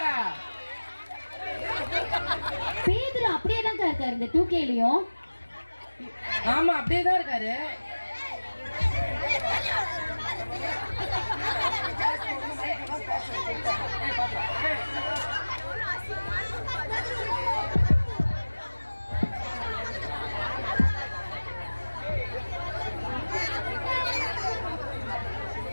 பேதுரு அப்படியே தான் இருக்காரு இந்த 2Kலயும். ஆமா அப்படியே தான் இருக்காரு.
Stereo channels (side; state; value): both; inverted; correlation -1.00